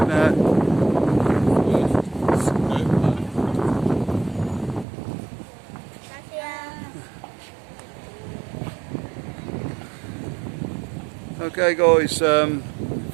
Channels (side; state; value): left; drops out; at 4.9 s